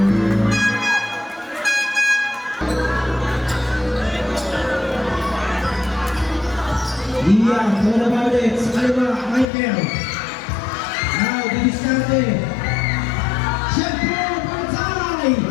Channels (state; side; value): drops out; right; at 9.5 s